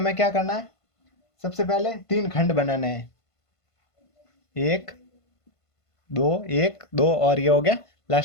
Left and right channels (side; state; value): right; late; 1.5 ms